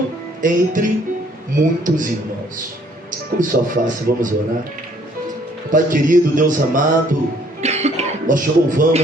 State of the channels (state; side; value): normal; both; correlation 0.62